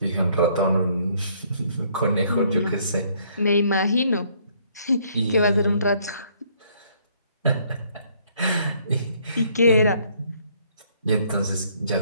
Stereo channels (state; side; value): inverted; both; correlation -0.65